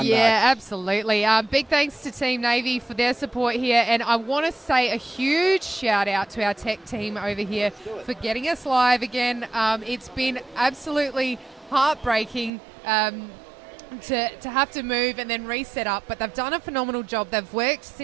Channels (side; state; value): left; drops out; at 12.5 s